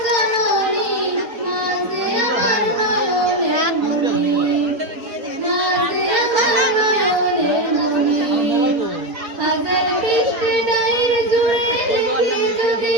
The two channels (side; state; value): left; late; 4.3 ms